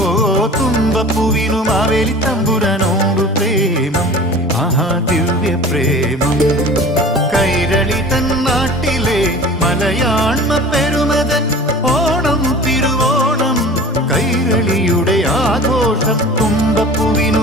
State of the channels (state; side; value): normal; both; correlation 0.40